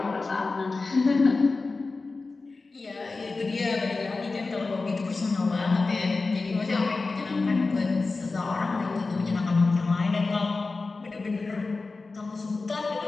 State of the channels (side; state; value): right; quieter; 3.8 dB